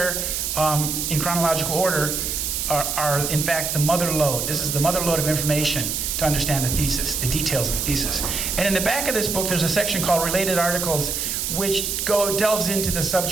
in chronological order, are in fact the mother lode. This is the mother lode of information to understand the thesis, the details of the thesis. And in the back of this book, there's a section called Related Articles, which delves into the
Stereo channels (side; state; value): right; noise; hiss, 1 dB below the sound